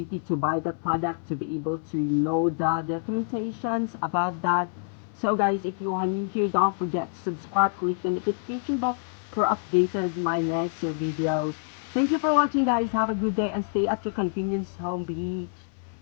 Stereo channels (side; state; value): right; silent; 60 dB below the other